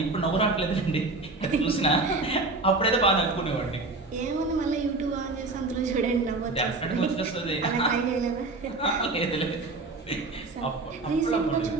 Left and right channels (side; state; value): left; quieter; 3.3 dB